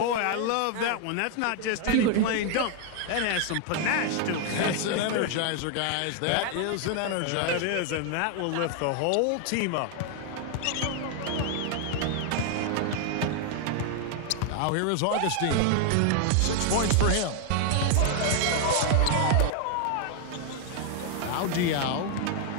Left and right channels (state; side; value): different; both; correlation 0.00